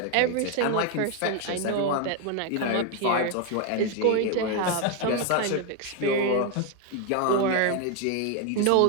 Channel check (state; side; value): different; both; correlation 0.01